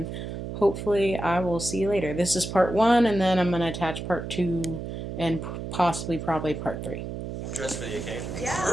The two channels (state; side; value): noise; right; hum, 7 dB below the sound